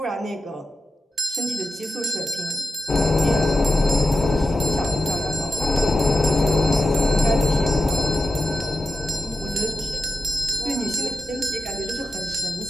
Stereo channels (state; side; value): normal; both; correlation 0.91